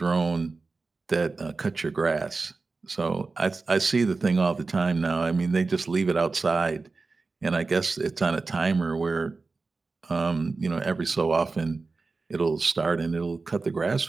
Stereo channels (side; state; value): left; quieter; 4.0 dB